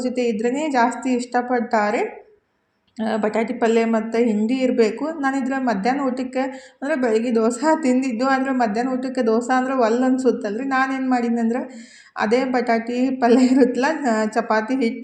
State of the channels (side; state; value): both; identical; correlation 1.00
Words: ಜೊತೆ ಇದ್ರೇ ಜಾಸ್ತಿ ಇಷ್ಟಪಡ್ತಾರೆ. ಬಟಾಟಿ ಪಲ್ಯ ಮತ್ತು ಹಿಂಡಿ ಇರಬೇಕು. ನಾನಿದ್ರೆ ಮಧ್ಯಾಹ್ನ ಊಟಕ್ಕೆ ಅಂದರೆ ಬೆಳಗ್ಗೆ ದೋಸೆ ತಿಂದಿದ್ದು. ಆದರೆ ಮಧ್ಯಾಹ್ನ ಊಟಕ್ಕೆ ದೋಸೆ ಅಂದ್ರೆ ಅನ್ಸುತ್ತಲ್ಲ ರೀ. ನಾನೇನು ಮಾಡೀನಿ ಅಂದ್ರೆ ಅದೇ ಬಟಾಟಿ ಪಲ್ಯ ಇರುತ್ತಲ್ಲ, ಚಪಾತಿ